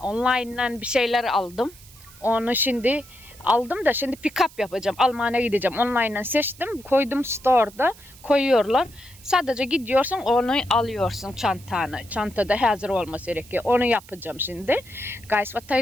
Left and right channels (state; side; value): noise; right; hiss, 22 dB below the sound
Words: Online'dan bir şeyler aldım. Onu şimdi aldım da şimdi pick up yapacağım. Almanya'ya gideceğim. Online'dan seçtim. Koydum store'da. Koyuyorlar. Sadece gidiyorsun onu alıyorsun çantanı. Çantada hazır olması gerekiyor. Onu yapacağım şimdi. Guys, what